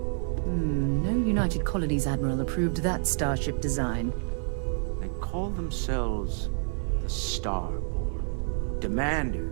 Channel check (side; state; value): left; silent; 59 dB below the other